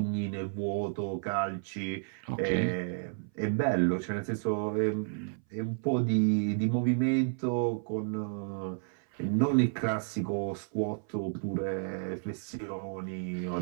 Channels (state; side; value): silent; left; 57 dB below the other